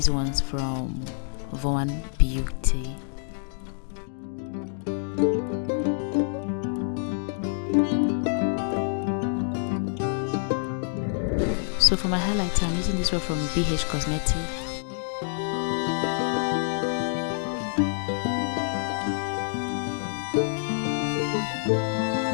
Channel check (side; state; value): right; silent; digital silence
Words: ones from Von Beauty. So for my highlighter, I'm using this one from BH Cosmetics.